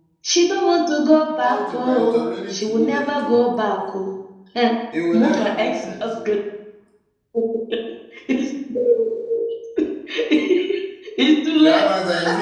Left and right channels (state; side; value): identical; both; correlation 1.00